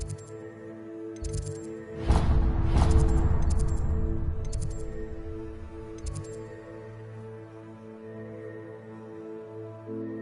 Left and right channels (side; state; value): both; identical; correlation 1.00